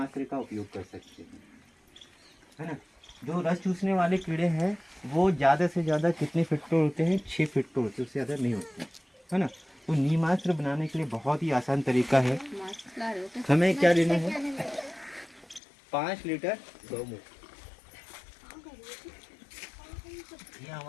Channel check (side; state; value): right; drops out; at 15.6 s